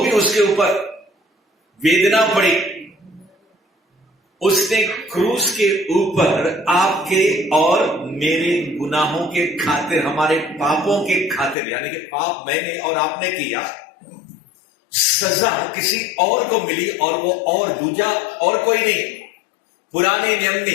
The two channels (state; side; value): drops out; right; at 11.6 s